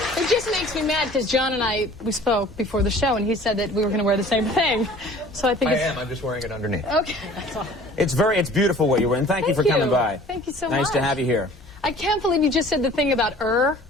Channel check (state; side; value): normal; both; correlation 0.49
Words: nice. It just makes me mad because John and we spoke before the show, and he said that we were going to wear the same thing. So I think I'm just wearing it underneath. Okay. That's all. It's beautiful what you're wearing. Thank you for coming by. Thank you so much. Nice to have you here. I can't believe you just said the thing about